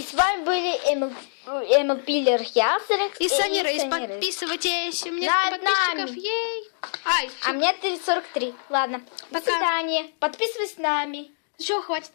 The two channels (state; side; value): silent; right; digital silence